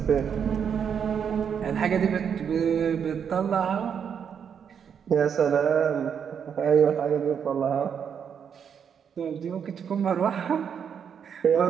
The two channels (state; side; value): quieter; left; 7.5 dB